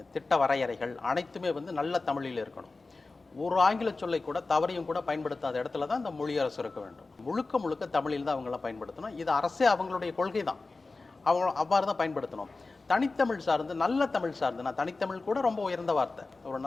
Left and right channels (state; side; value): quieter; right; 3.6 dB